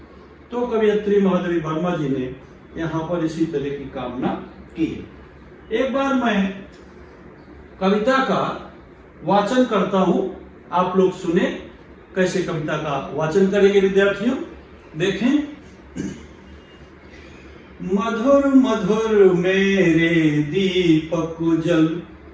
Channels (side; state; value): both; identical; correlation 1.00